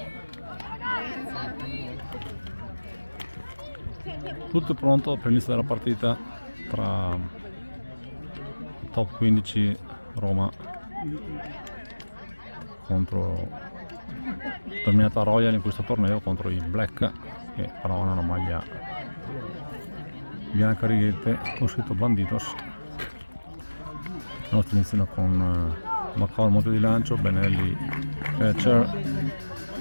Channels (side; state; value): both; inverted; correlation -1.00